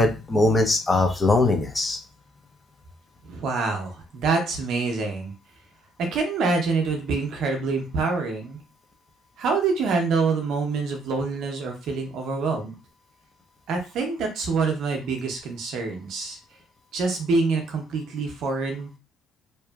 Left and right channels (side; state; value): both; normal; correlation 0.69